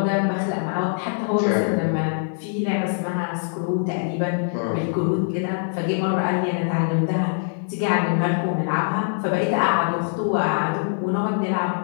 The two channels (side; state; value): right; silent; 63 dB below the other